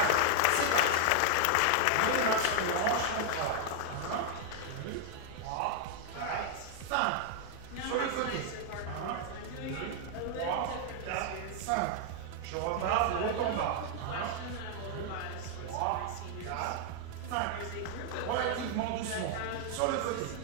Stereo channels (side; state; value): both; different; correlation 0.00